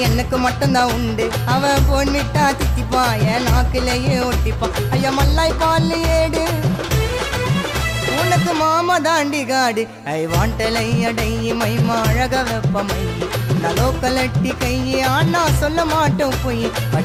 எனக்கு மட்டும்தான் உண்டு அவன் போன் விட்டா தித்திப்பான் என் நாக்குலயே ஒட்டிப்பான் ஐயா மல்லாய் பால் ஏடு உனக்கு மாமா தாண்டி காடு ஐ வாண்டலை அடை மைமா அழக வெப்பமை நலோக்கலட்டி கையே ஆனா சொல்ல மாட்டோம் போய்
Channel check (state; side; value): identical; both; correlation 1.00